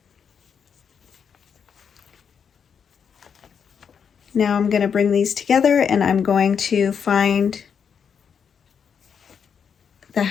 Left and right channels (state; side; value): quieter; right; 7.0 dB